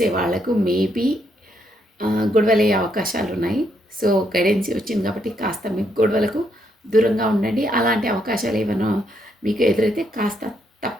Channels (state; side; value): normal; both; correlation 0.75